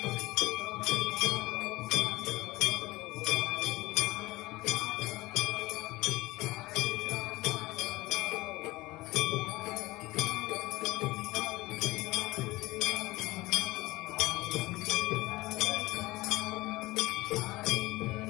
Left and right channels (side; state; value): right; quieter; 19.9 dB